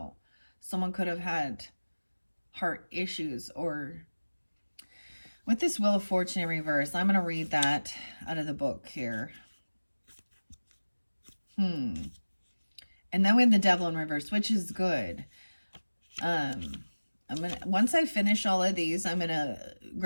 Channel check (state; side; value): inverted; both; correlation -1.00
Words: Someone could have had heart issues or with this Wheel of Fortune in reverse. I'm going to read that out of the book here. And then we have the devil in reverse, which is good. I'm gonna, once I finish all of these, I'm gonna